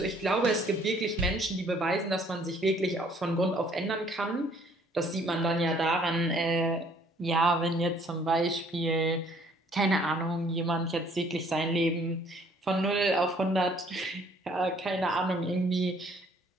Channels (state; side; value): normal; both; correlation 0.60